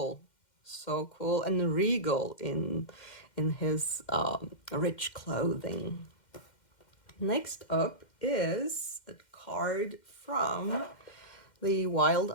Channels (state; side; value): late; right; 2.1 ms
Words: and regal in his rich clothing. Next up is a card from the Wild